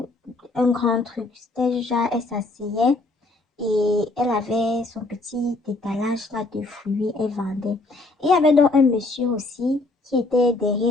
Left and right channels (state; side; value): quieter; right; 3.1 dB